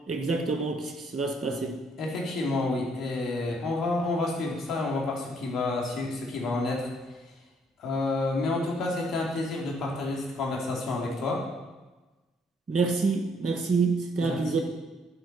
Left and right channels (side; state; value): both; normal; correlation 0.67